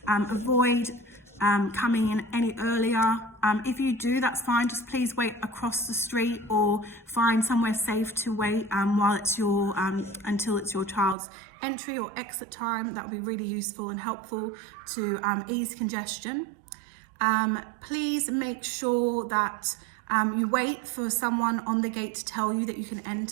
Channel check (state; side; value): drops out; left; at 11.2 s